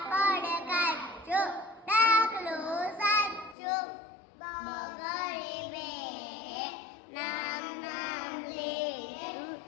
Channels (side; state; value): right; drops out; at 3.6 s